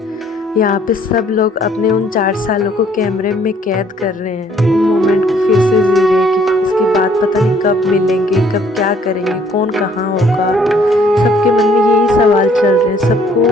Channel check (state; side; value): normal; both; correlation 0.62